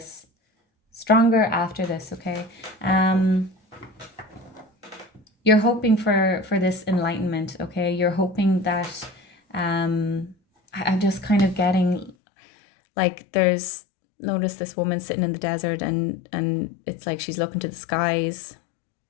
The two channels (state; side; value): drops out; right; at 12.1 s